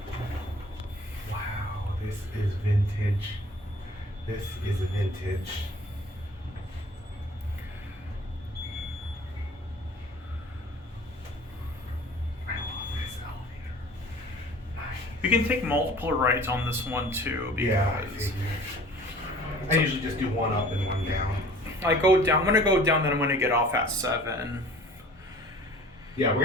wow, this is vintage. This is vintage. I love this elevator. Nice. You can take multiple rides on this one too. Yeah, I Because figured. I usually just do one up and one down. I go down. I'm gonna go down, then I'm gonna get off at 7. Yeah, we're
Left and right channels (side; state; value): both; normal; correlation 0.48